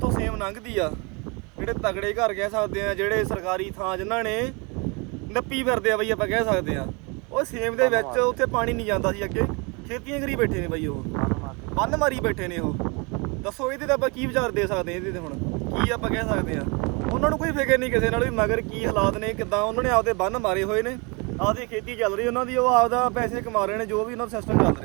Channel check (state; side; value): quieter; left; 30.4 dB